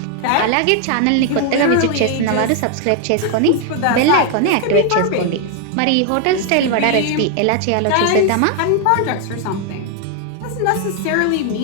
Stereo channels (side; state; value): both; different; correlation 0.00